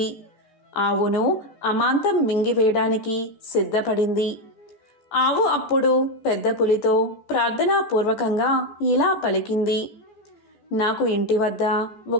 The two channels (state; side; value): late; right; 14 ms